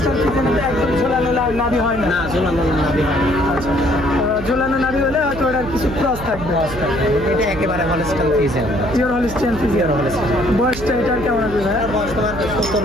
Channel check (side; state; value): right; noise; hum, 10 dB below the sound